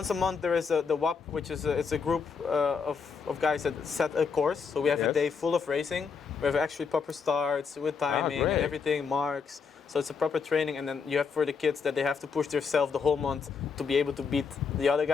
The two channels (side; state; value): right; quieter; 5.6 dB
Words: a month there is the WAP, which is it's a group of guys that set a course. So we have a Yes. day full of racing. We have actually proper starts with timing and great. everything, marks, So it's a proper training, and then you have for the kids that they have to push themselves the whole month to be able to beat the other